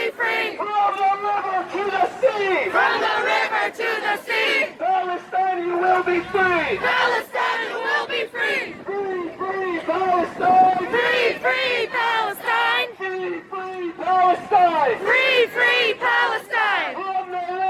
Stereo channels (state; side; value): identical; both; correlation 1.00